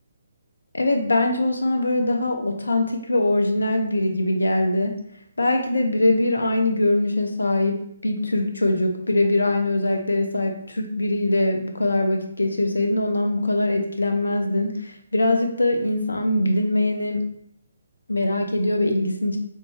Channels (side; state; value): both; inverted; correlation -0.88